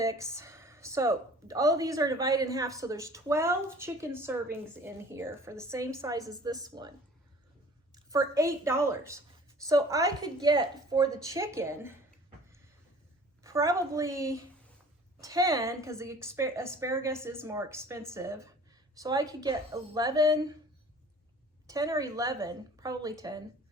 So all of these are divided in half. So there's 12 chicken servings in here for the same size as this one for $8. So I could get for the chicken probably 10, because the asparagus is more expensive. So I could get 10 or 11, probably 10,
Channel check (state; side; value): normal; both; correlation 0.48